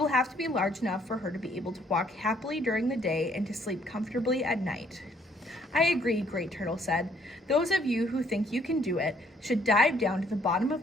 have to be large enough for her to be able to walk happily during the day and to sleep comfortably at night." "I agree," Great Turtle said. "Those of you who think you can do it should dive down to the bottom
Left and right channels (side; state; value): both; normal; correlation 0.65